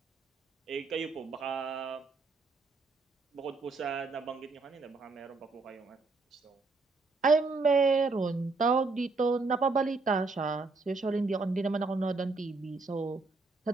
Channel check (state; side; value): quieter; left; 3.8 dB